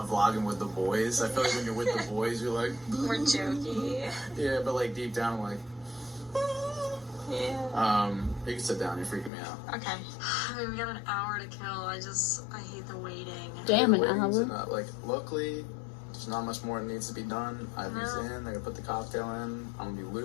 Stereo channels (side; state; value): right; drops out; at 9.3 s